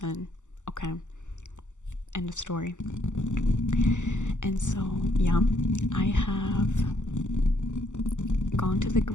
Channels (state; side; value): late; right; 0.85 ms